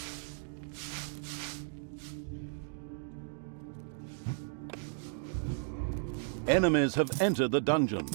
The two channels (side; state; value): left; silent; digital silence